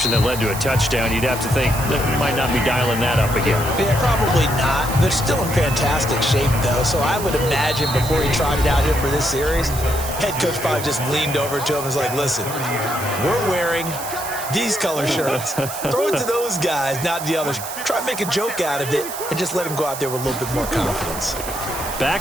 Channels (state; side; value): noise; right; hiss, 9 dB below the sound